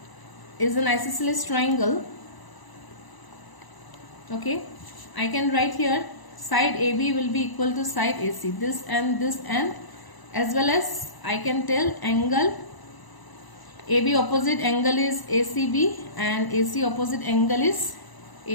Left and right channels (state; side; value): late; right; 1.0 ms